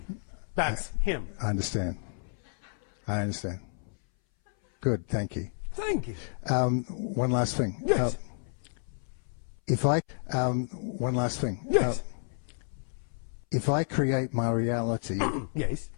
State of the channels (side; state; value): right; silent; 58 dB below the other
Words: That's him. I understand. Good, thank you. Thank you. One last thing. Yes. One last thing. Yes. If I create my reality, Yes.